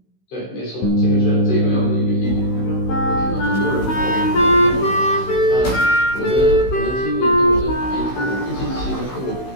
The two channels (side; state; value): right; late; 16 ms